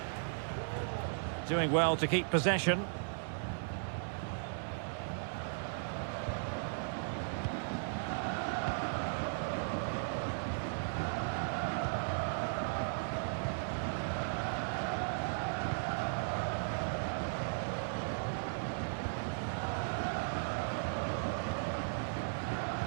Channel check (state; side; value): silent; left; digital silence